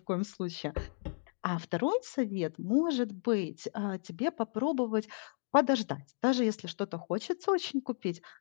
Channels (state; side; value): silent; right; digital silence